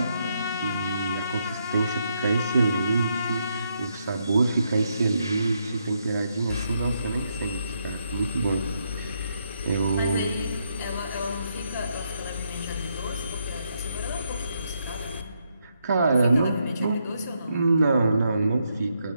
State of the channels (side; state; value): both; inverted; correlation -0.78